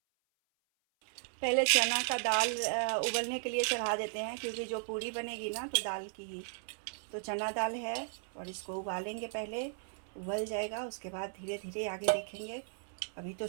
पहले चना का दाल उबलने के लिए चढ़ा देते हैं, क्योंकि जो पूरी बनेगी ना तो दाल की ही। तो चना दाल है और इसको उबालेंगे, पहले उबल जाएगा, उसके बाद धीरे धीरे आगे देखेंगे। अभी तो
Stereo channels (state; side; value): silent; left; 54 dB below the other